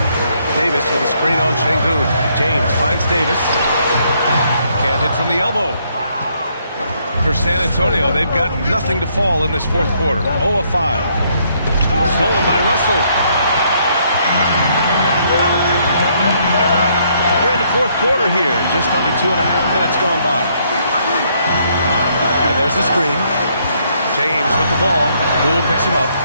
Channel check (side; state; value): both; inverted; correlation -0.70